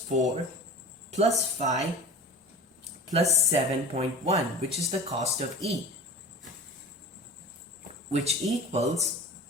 4 plus 5 plus 7.1, which is the cost of E, which equals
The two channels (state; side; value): normal; both; correlation 0.37